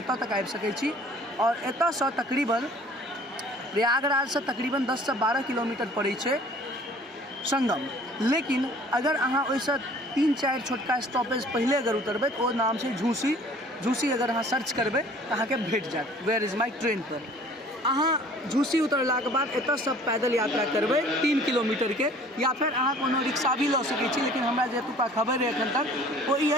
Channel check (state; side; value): normal; both; correlation 0.51